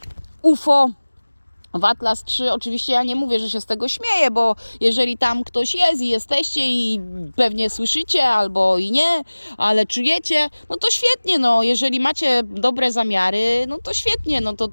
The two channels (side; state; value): both; inverted; correlation -1.00